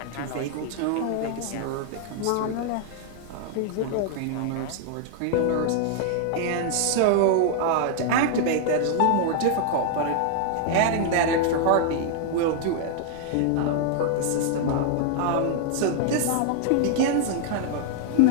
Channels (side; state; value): both; different; correlation -0.01